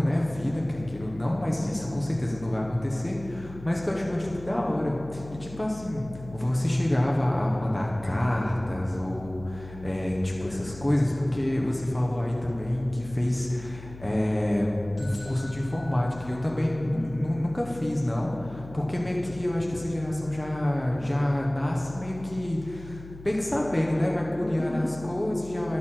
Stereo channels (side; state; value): left; noise; hum, 16 dB below the sound